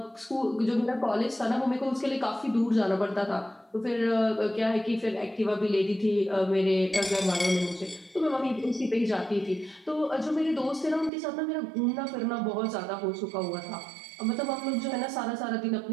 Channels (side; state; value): left; drops out; at 11.1 s